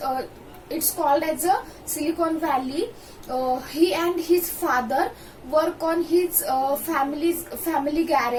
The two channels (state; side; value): identical; both; correlation 1.00